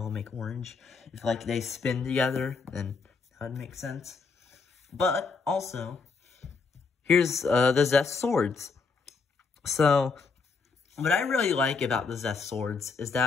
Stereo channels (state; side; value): quieter; right; 4.8 dB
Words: make orange. If, like, they spin together, then that would make sense. But, also, here's the Zest swords. So, what I really like about the Zest swords is